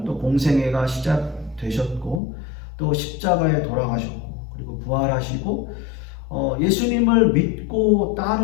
또 공생애가 시작되셨고 또 십자가에 돌아가셨고 그리고 부활하시고 예수님을 믿고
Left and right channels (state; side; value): drops out; right; at 2.2 s